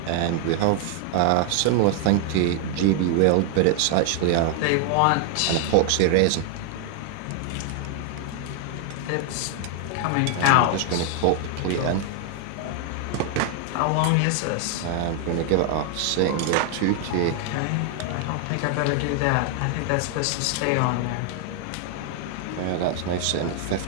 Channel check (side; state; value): both; different; correlation 0.00